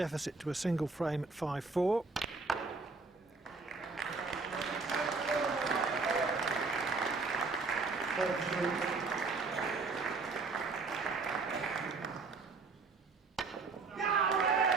to a single frame at 5-4.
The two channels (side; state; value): left; quieter; 4.1 dB